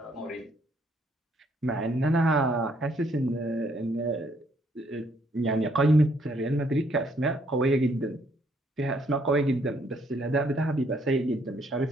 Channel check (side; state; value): both; normal; correlation 0.69